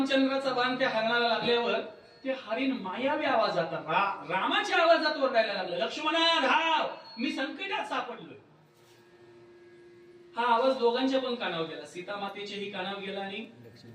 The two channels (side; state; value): both; identical; correlation 1.00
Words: बाण त्या हरणाला लागल्यावर ते हरिण मायावी आवाजात रामाच्या आवाजात ओरडायला लागलं, लक्ष्मणा धाव, मी संकटात सापडलोय. हा आवाज दोघांच्या पण कानावर गेला, सीता मातेच्याही कानावर गेला आणि